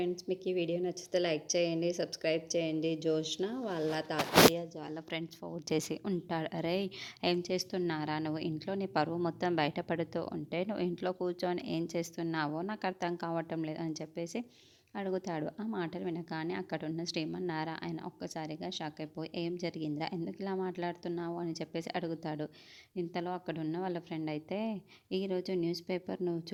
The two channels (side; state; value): both; identical; correlation 1.00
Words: మీకు ఈ video నచ్చితే లైక్ చేయండి, సబ్స్క్రైబ్ చేయండి. జోష్న వాళ్ళ తాతయ్య వాళ్ళ ఫ్రెండ్స్ ఫోన్ చేసి ఉంటాడు. అరే, ఏం చేస్తున్నారా నువ్వు? ఇంట్లో నీ పరువు మొత్తం బయటపడుతూ ఉంటే నువ్వు ఇంట్లో కూర్చొని ఏం చేస్తున్నావో నాకు అర్థం కావటం లేదు అని చెప్పేసి అడుగుతాడు. ఆ మాటలు వినగానే అక్కడున్న శ్రీమన్నారాయణ ఒక్కసారిగా షాక్ అయిపోయి, ఏం జరిగిందిరా, ఎందుకు ఇలా మాట్లాడుతున్నావు అని చెప్పేసి అడుగుతాడు. ఇంతలో అక్కడున్న వాళ్ళ ఫ్రెండ్ అయితే, ఈరోజు న్యూస్ పేపర్ నువ్వు